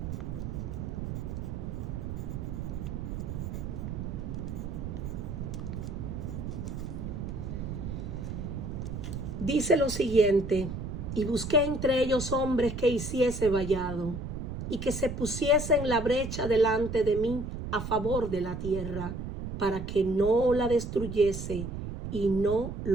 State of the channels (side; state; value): right; noise; rumble, 6 dB below the sound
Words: dice lo siguiente: y busqué entre ellos hombres que hiciese vallado, y que se pusiese en la brecha delante de mí a favor de la tierra, para que no la destruyese, y no